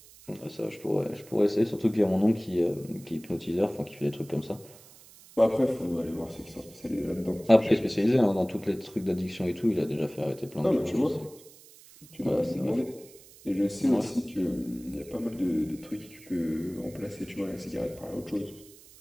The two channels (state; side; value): noise; right; hiss, 22 dB below the sound